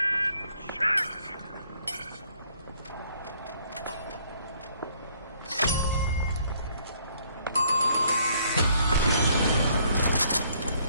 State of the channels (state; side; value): inverted; both; correlation -0.65